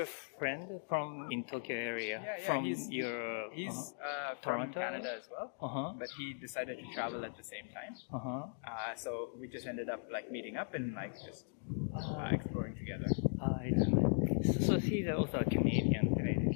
friend from in Tokyo area? From he's from Toronto? Canada as well, but he decided to travel at the same time. So we just ended up like meeting up and like just exploring together. So he's also a Canadian.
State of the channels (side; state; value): right; silent; digital silence